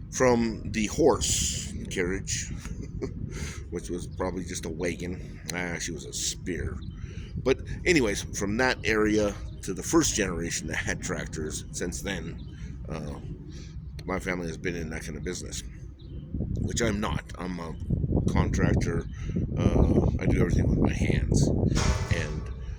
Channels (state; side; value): identical; both; correlation 1.00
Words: from the horse carriage, which was probably just a wagon. Actually, was a spear. But anyways, from that area to the first generation that had tractors, since then, uh, my family has been in that kind of business, which I'm not. I'm a contractor. I do everything with my hands, and